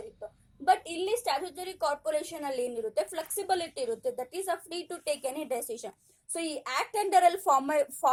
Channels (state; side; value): identical; both; correlation 1.00